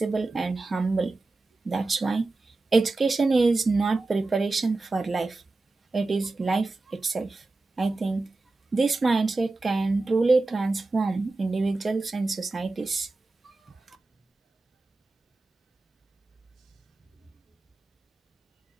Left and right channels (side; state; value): left; quieter; 3.3 dB